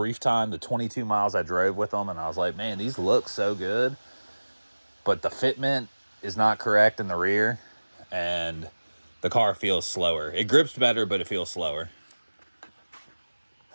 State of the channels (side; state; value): both; inverted; correlation -1.00